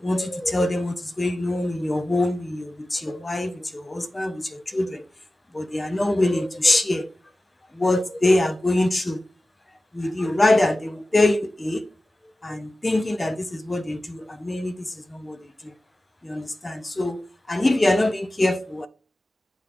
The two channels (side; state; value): both; normal; correlation 0.95